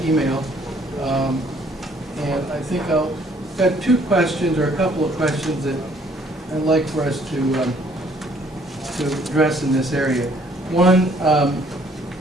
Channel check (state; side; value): normal; both; correlation 0.62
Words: email. And I think I've got two questions, or a couple of questions that I'd like for us to address in this area. One,